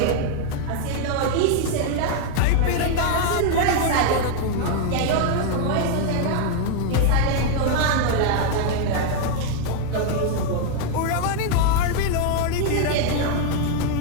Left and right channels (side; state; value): both; different; correlation 0.00